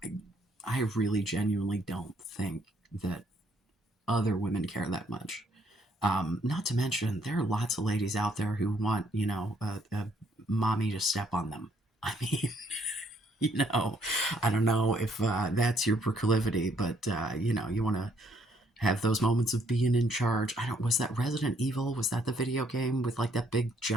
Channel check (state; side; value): normal; both; correlation 0.68